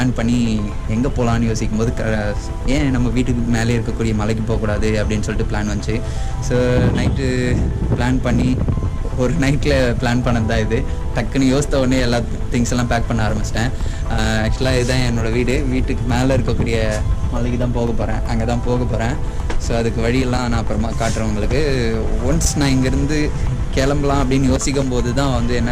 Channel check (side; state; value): both; identical; correlation 1.00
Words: பண்ணி எங்கே போகலான்னு யோசிக்கும் போது ஏன் நம்ம வீட்டுக்கு மேலே இருக்கக்கூடிய மலைக்கு போகக்கூடாது அப்படின்னு சொல்லிட்டு பிளான் வந்துச்சு. ஸோ நைட்டு பிளான் பண்ணி ஒரு நைட்டில் பிளான் பண்ணது தான் இது. டக்குன்னு யோசித்த உடனே எல்லா திங்ஸ் எல்லாம் பேக் பண்ண ஆரம்பிச்சிட்டேன். ஆக்சுவலாக இதுதான் என்னோடய வீட்டுக்கு மேலே இருக்கக்கூடிய மலைக்கு தான் போக போகிறேன், அங்கே தான் போக போகிறேன். ஸோ அதுக்கு வழியெல்லாம் நான் அப்புறமா காட்டுறேன் உங்களுக்கு. ஒன்ஸ் நான் இங்கேருந்து கிளம்பலாம் அப்படின்னு யோசிக்கும் போது தான் வந்து